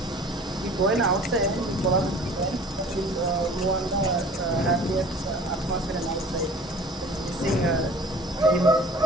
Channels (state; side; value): normal; both; correlation 0.45